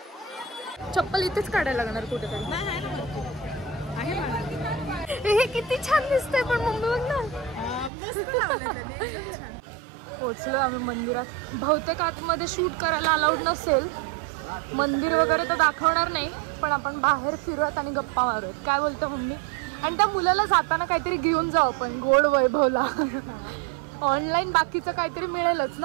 चप्पल इथेच काढायला लागणार कुठेतरी. हे किती छान दिसतंय पण मम्मी बघ ना, मस्त लावलं त्याने. पोचलो आम्ही मंदिरात. बहुतेक आतमध्ये शूट करायला अलाउड नसेल, मंदिर वगैरे तर दाखवणार नाही, पण आपण बाहेर फिरूयात आणि गप्पा मारूयात. काय बोलतो मम्मी? आणि त्या मुलाला जाताना काहीतरी घेऊन जाऊ आपण, गोड वैभवला. ऑनलाईन बाकीचं काहीतरी मिळेलच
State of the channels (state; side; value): drops out; left; at 7.9 s